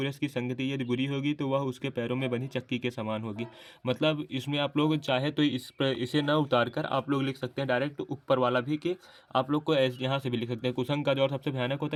की संगति यदि बुरी होगी तो वह उसके पैरों में बनी चक्की के समान होगी। मतलब इसमें आप लोग चाहे तो इसे ना उतार कर आप लोग लिख सकते हैं डायरेक्ट ऊपर वाला भी, कि आप लोग को यहाँ से भी लिख सकते हैं, कुसंग का ज्वर सबसे भयानक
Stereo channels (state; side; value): identical; both; correlation 1.00